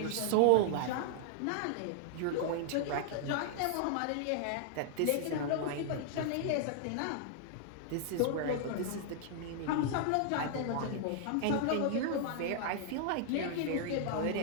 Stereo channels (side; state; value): both; different; correlation -0.01